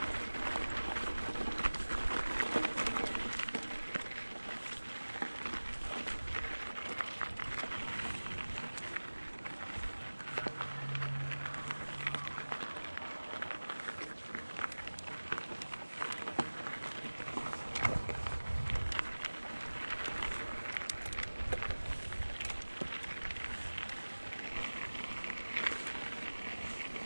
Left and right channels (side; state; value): both; inverted; correlation -1.00